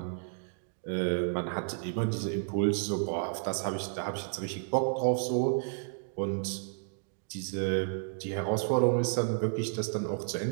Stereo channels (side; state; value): left; silent; digital silence